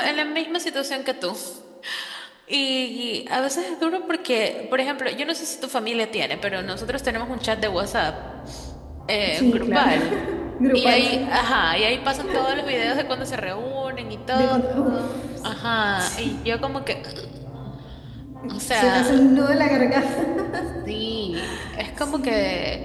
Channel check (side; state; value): both; identical; correlation 1.00